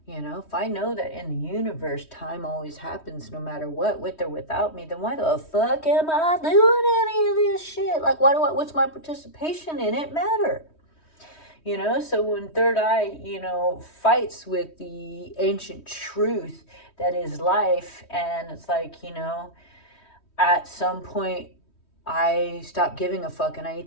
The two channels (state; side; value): late; right; 3.1 ms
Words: If I know that in the universe, time always happens no matter what, with or without me, then why the fuck am I doing any of this shit? Like, what's my participation in it matter? So when third eye, fights with the ancient truth that is life, and it's like, at some point, I stop giving a fuck and I